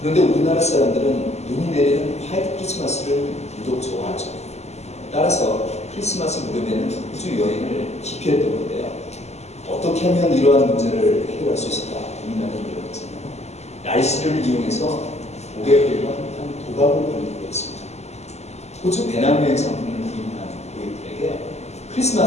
우리나라 사람들은 눈이 내리는 화이트 크리스마스를 유독 좋아하죠. 따라서 크리스마스 무렵에는 호주 여행을 기피했던 건데요. 어떻게 하면 이러한 문제를 해결할 수 있을까 고민하는 일이었잖아요. 날씨를 이용해서 고객들과 한 도박을 벌이기로 했습니다. 호주 배낭여행 상품을 구입한 고객들에게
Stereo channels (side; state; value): right; late; 0.32 ms